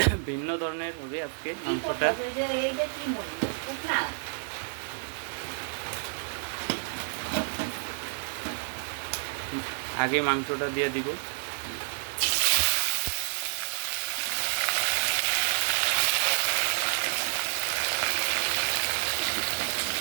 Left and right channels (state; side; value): silent; left; digital silence